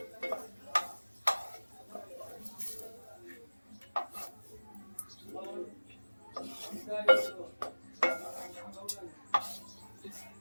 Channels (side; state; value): both; inverted; correlation -1.00